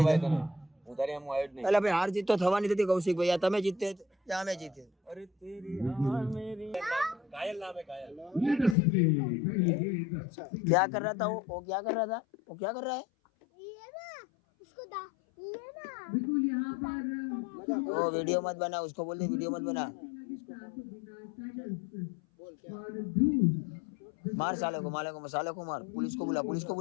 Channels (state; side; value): drops out; right; at 8.8 s